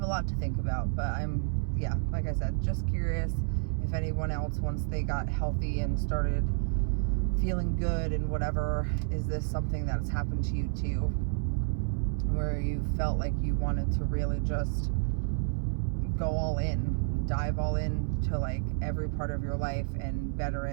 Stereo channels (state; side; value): silent; left; 58 dB below the other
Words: a lot to think about, but yeah, like I said, just curious if anyone else, once they got healthy and started feeling good and whatever, is this something that's happened to you too, where you felt like you wanted to really just go all in, dive all in to like every part of your life and better